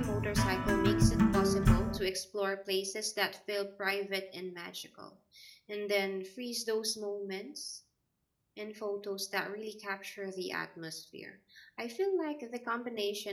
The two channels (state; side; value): identical; both; correlation 1.00